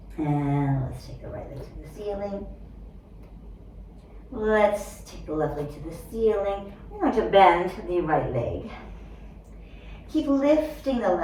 And let's take the right leg to the ceiling. Let's take the left leg to the ceiling. We're going to bend the right leg. Keep lifting the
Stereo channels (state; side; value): identical; both; correlation 1.00